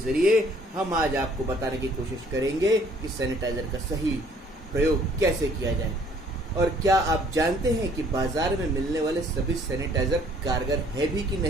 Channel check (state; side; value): normal; both; correlation 0.59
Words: हम आज आपको बताने की कोशिश करेंगे कि सैनिटाइजर का सही प्रयोग कैसे किया जाए। और क्या आप जानते हैं कि बाजार में मिलने वाले सभी सैनिटाइजर कारगर है भी कि